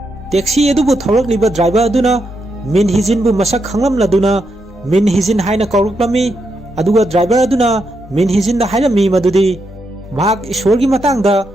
taxi adubu tholaklliba driver aduna min hijin bu masak khanglamladuna min hijin haina kawraklami aduga driver aduna min hijin da hairami madudi mahak ishorgi matangda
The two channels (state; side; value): normal; both; correlation 0.82